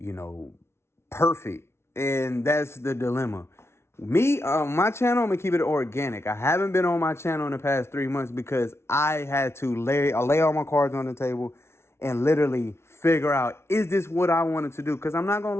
know, perfect. And that's the dilemma. Me, my channel, I'm gonna keep it organic. I haven't been on my channel in the past 3 months because I had to lay all my cards on the table and literally figure out, is this what I wanted to do? Because I'm not gonna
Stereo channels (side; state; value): right; late; 0.12 ms